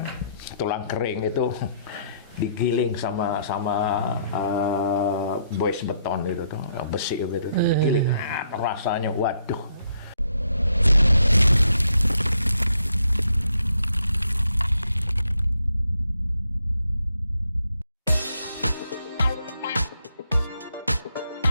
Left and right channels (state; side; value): inverted; both; correlation -0.73